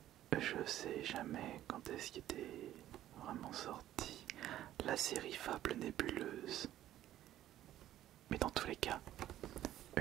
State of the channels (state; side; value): quieter; left; 12.9 dB